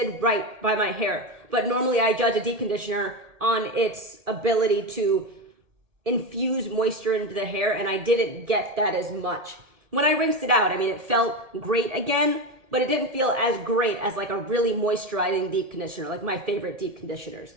right by my hair. But normally I judge a deep conditioner on its ability to infuse moisture into the hair, and I didn't get that as much. When I rinsed it out, I mean, it felt great again, but it didn't feel as great as like a really moisturizing deep conditioner, like my favorite deep conditioners.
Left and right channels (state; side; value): late; left; 1.7 ms